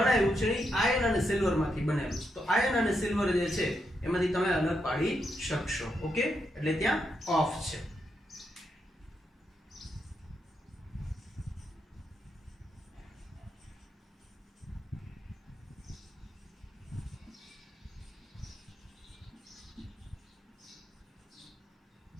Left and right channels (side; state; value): both; normal; correlation 0.82